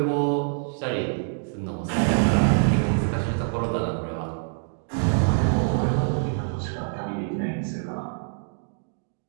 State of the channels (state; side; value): silent; left; digital silence